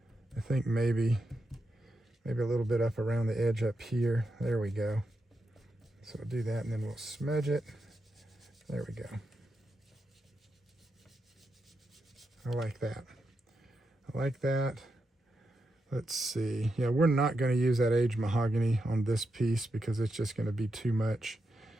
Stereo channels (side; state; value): both; normal; correlation 0.85